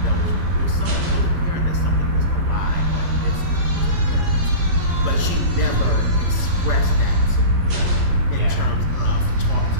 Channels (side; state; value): left; late; 12 ms